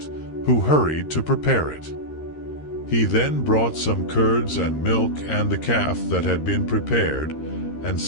who hurried to prepare it. He then brought some curds and milk and the calf that had been prepared, and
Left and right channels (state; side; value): late; right; 13 ms